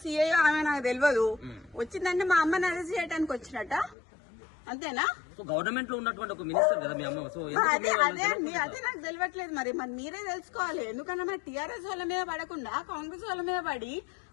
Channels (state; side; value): drops out; right; at 4.0 s